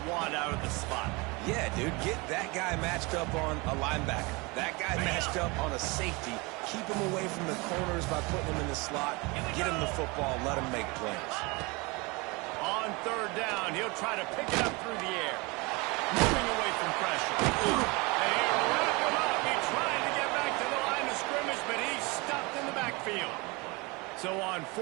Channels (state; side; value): quieter; left; 26.4 dB